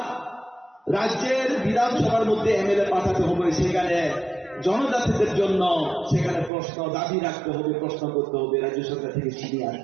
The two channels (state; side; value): drops out; left; at 6.5 s